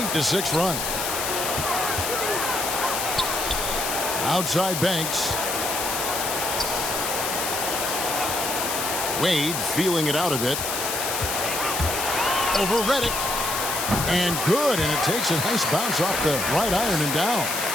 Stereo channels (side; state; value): left; noise; hiss, 2 dB below the sound